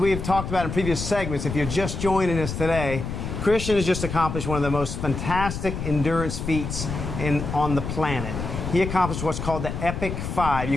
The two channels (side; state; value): left; noise; rumble, 5 dB below the sound